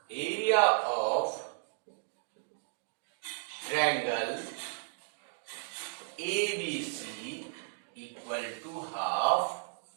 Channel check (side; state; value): left; silent; digital silence